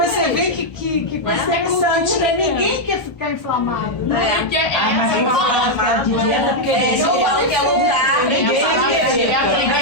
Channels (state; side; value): late; right; 1.3 ms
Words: vê que interessante, né? Ninguém quer ficar inflamado, né? Porque é Mas quem fala de dieta, porque Eu falo que é lugar, ninguém